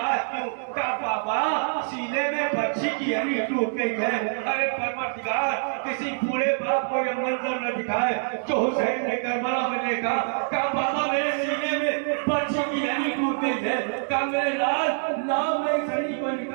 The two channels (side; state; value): left; silent; digital silence